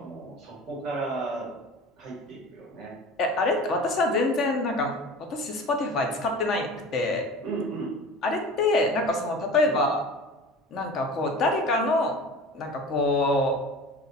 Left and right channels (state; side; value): normal; both; correlation 0.36